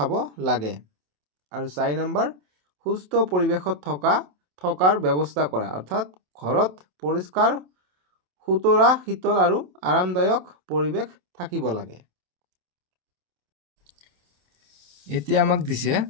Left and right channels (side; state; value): left; late; 27 ms